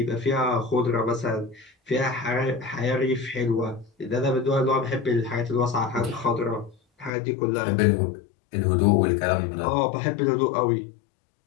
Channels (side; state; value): right; drops out; at 7.1 s